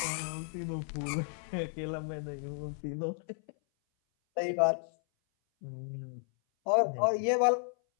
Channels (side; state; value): right; silent; 56 dB below the other